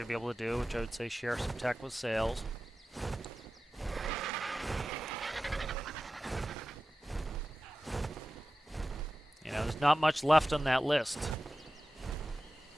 to be able to do, which I would say share some tech with sales. You know, there's not much left on that list.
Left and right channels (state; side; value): normal; both; correlation 0.94